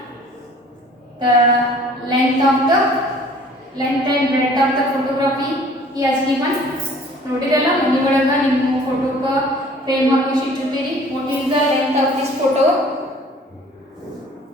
the length and breadth of the photography he has given. ನೋಡಿರಲ್ಲ ಮನಿ ಒಳಗ ನಿಮ್ಮ ಫೋಟೋಕ್ಕೆ frame ಹಾಕಿ ಇಟ್ಟಿರ್ತೀರಿ. What is the length of this photo?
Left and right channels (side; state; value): both; normal; correlation 0.52